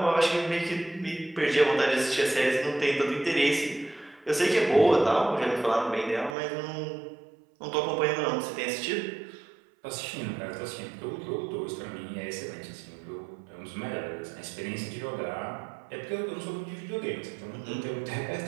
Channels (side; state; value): left; drops out; at 6.4 s